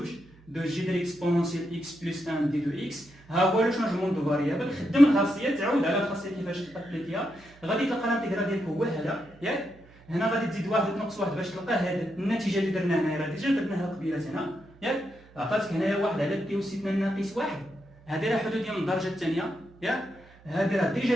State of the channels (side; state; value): right; noise; hum, 26 dB below the sound